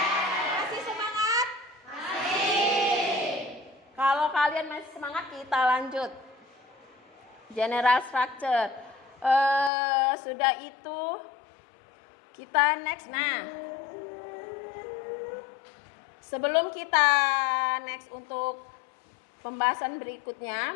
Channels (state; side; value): drops out; right; at 9.7 s